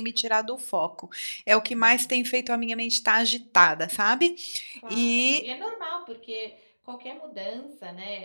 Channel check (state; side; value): inverted; both; correlation -1.00